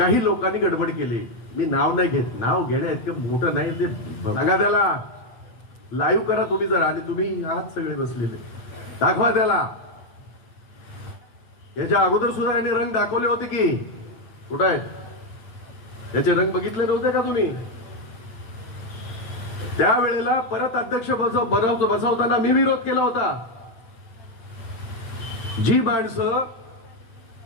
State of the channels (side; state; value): right; late; 8.8 ms